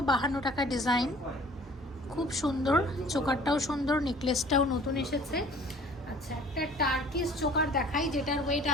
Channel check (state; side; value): normal; both; correlation 0.51